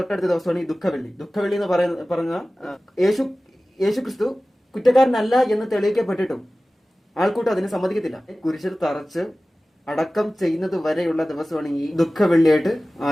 ദിവസമാണ് ഈ ദുഃഖവെള്ളി. ദുഃഖവെള്ളി എന്ന് പറഞ്ഞ യേശു ക്രിസ്തു കുറ്റക്കാരനല്ല എന്ന് തെളിയിക്കപ്പെട്ടിട്ടും ആൾക്കൂട്ടം അതിന് സമ്മതിക്കത്തില്ല. കുരിശിൽ തറച്ച് അടക്കം ചെയ്യുന്നത് വരെയുള്ള ദിവസമാണ് ഈ ദുഃഖവെള്ളിയായിട്ട്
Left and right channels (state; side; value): normal; both; correlation 0.97